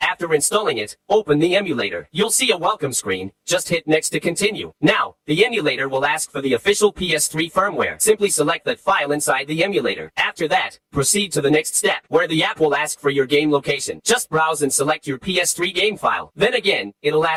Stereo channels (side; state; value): both; identical; correlation 1.00